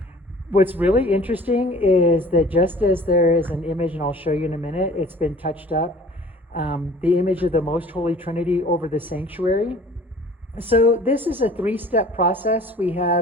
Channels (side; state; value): both; normal; correlation 0.49